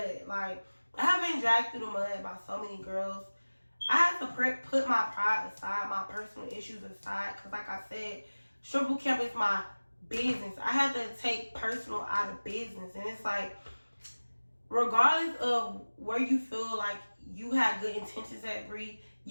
Like, I have been dragged through the mud by so many girls. I had to put my pride aside, my personal issues aside, because like I said, strip boot camp is my business. I had to take personal out of business. And it's like, regardless of where you feel like you had good intentions at, Bree,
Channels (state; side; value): inverted; both; correlation -1.00